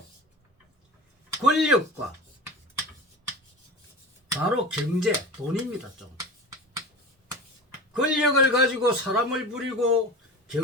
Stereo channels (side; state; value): both; normal; correlation 0.33